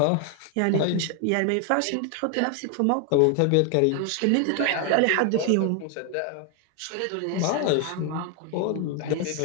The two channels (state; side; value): different; both; correlation 0.01